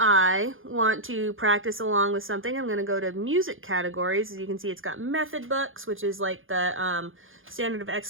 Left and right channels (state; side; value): late; left; 0.59 ms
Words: I want to practice along with something, I'm going to go to music categories. As you can see, it's got method books, which is like the standard of